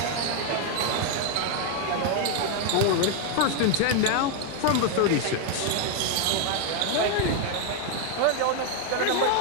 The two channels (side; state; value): both; different; correlation 0.00